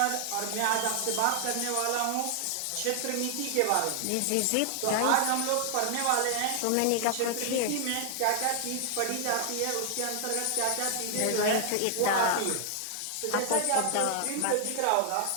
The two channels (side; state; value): both; different; correlation 0.00